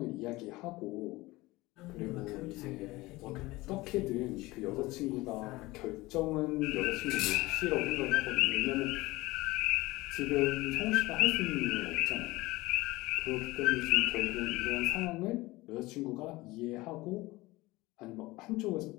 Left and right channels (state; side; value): quieter; right; 20.3 dB